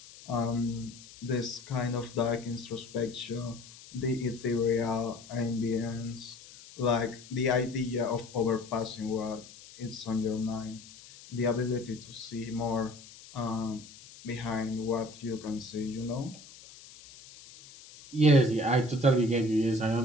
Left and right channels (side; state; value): left; noise; hiss, 19 dB below the sound